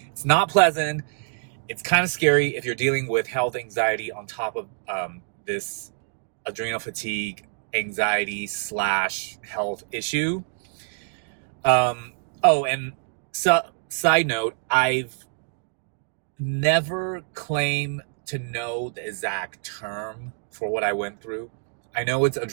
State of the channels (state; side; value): silent; left; digital silence